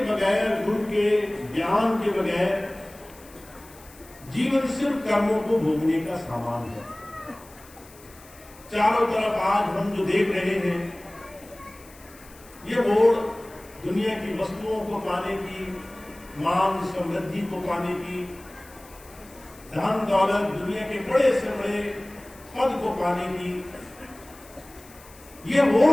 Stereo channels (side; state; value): left; noise; hiss, 23 dB below the sound